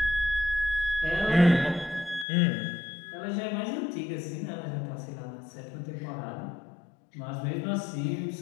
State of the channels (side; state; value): right; drops out; at 2.2 s